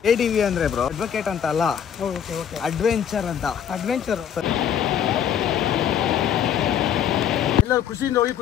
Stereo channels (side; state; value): right; quieter; 8.7 dB